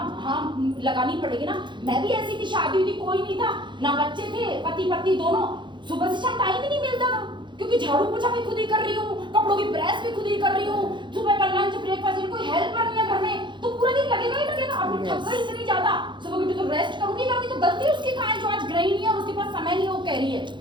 लगानी पड़ेगी ना। मैं भी ऐसी थी, शादी हुई थी, कोई नहीं था, ना बच्चे थे, पति पत्नी दोनों, सुबह से शाम टाइम ही नहीं मिलता था, क्योंकि झाड़ू पोछा भी खुद ही कर रही हूँ, कपड़ों की प्रेस भी खुद ही कर रही हूँ, सुबह का लंच ब्रेकफास्ट, कोई हेल्पर नहीं है घर में, तो पूरा दिन लगेगा ही लगेगा। अब थक गई इतनी ज्यादा, सुबह उठी तो रेस्ट करूंगी, तो गलती उसकी कहाँ है जो आज गृहिणी है और उसके पास समय नहीं, वो कह रही है,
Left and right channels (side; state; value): left; late; 0.23 ms